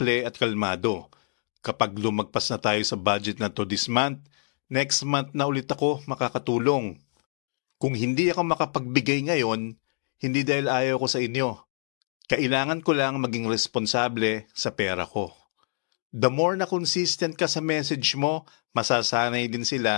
at kalmado. Kapag lumagpas na tayo sa budget na to this month, next month na ulit ako makakatulong. Kung hindi ako makapagbigay ngayon, hindi dahil ayaw ko sa inyo. Kailangan ko lang maging responsable sa pera ko. The more na consistent ka sa message mo, masasanay din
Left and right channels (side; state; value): right; silent; digital silence